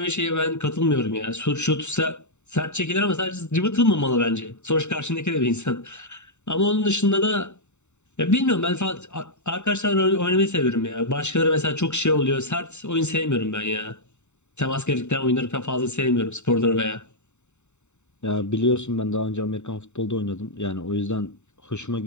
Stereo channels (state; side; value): late; right; 0.83 ms